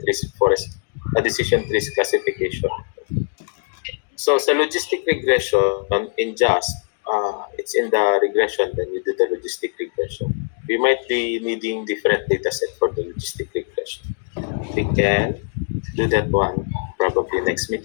trees classification. So sa logistic regression in JASP, it's in the regression, then you do the logistic regression. We might be needing different data set for the logistic regression. We can do that one probably next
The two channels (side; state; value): right; silent; digital silence